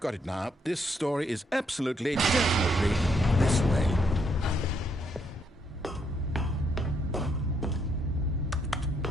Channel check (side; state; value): both; normal; correlation 0.74